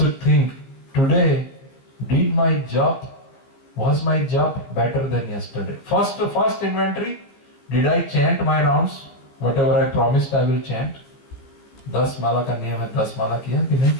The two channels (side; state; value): right; late; 15 ms